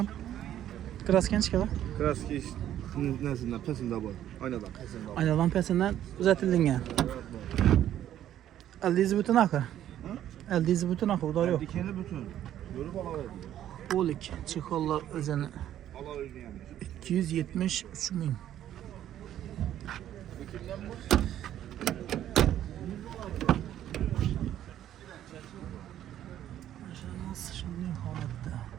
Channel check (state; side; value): quieter; left; 11.6 dB